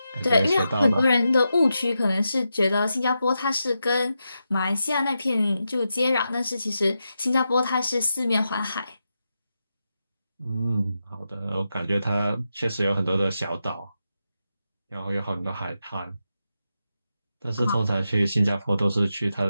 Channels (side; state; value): both; inverted; correlation -0.87